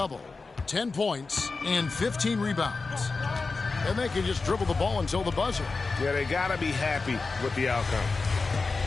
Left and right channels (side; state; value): right; quieter; 4.1 dB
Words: 10 points and 15 rebounds. And they can just dribble the ball until the buzzer. Yeah, they got to be happy with the outcome.